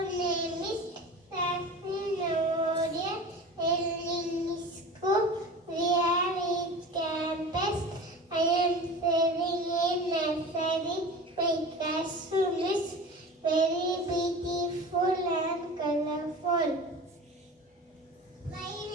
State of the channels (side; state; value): both; normal; correlation 0.35